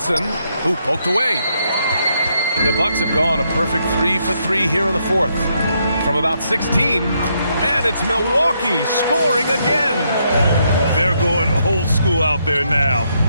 who poked away. The Bucks have gone a perfect 3 for 3 here in the fourth. From about 16, and it's Milwaukee scoring again. They're going old school out there now,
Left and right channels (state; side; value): inverted; both; correlation -0.76